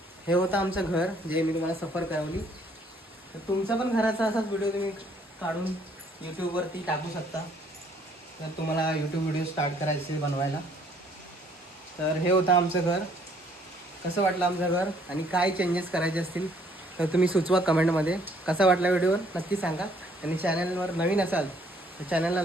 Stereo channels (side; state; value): both; normal; correlation 0.63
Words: हे होतं आमचं घर जे मी तुम्हाला सफर करवली. तर तुमचा पण घराचा असाच व्हिडिओ तुम्ही काढून यूट्यूबवरती टाकू शकता. तर तुम्हाला यूट्यूब व्हिडिओ स्टार्ट करायचे बनवायला. तर हे होतं आमचं घर. कसं वाटलं आमचं घर आणि काय चेंजेस करायचे असतील तर तुम्ही सुचवा कमेंटमध्ये. कसा वाटला व्हिडिओ नक्की सांगा. आणि चॅनलवर नवीन असाल तर चॅनलला